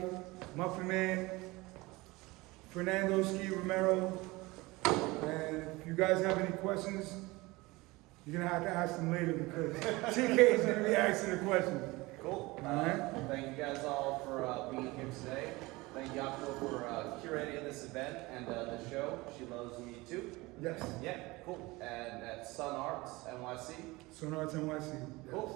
Muffin Man, Fernando Ski Romero. And if you guys have any questions, you're gonna have to ask them later because CK is gonna be asking the questions. Cool. Alright. Thank you guys all for being here today. Thank you, Optimal, for curating this event and the show. She Loves Me Too. Yes. Yeah, cool. And at Sun Arts NYC. Sun Arts NYC. Yes.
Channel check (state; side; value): quieter; left; 22.1 dB